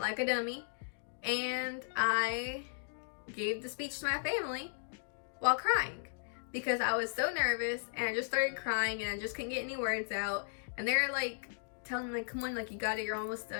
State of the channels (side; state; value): right; silent; digital silence